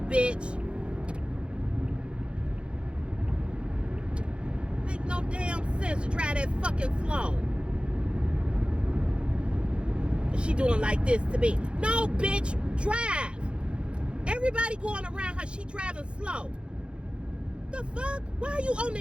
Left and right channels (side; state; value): left; late; 0.056 ms